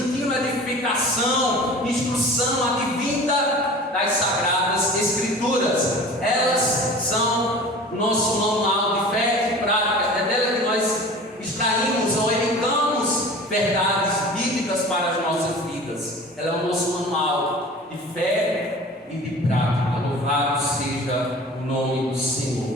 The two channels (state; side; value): normal; both; correlation 0.40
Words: edificação, instrução advinda das Sagradas Escrituras. Elas são o nosso manual de fé e prática, é dela que nós extraímos ou elencamos verdades bíblicas para as nossas vidas. Ela é o nosso manual de fé e de prática. Louvado seja o nome do